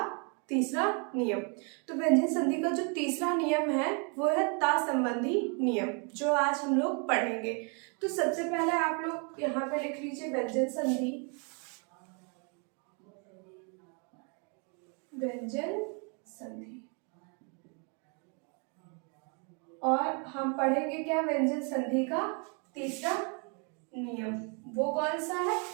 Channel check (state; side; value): quieter; left; 36.9 dB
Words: तीसरा नियम। तो व्यंजन संधि का जो तीसरा नियम है वो है ता संबंधी नियम, जो आज हम लोग पढ़ेंगे। तो सबसे पहले आप लोग यहाँ पे लिख लीजिए व्यंजन संधि। व्यंजन संधि और हम पढ़ेंगे क्या? व्यंजन संधि का तीसरा नियम। वो कौन सा है?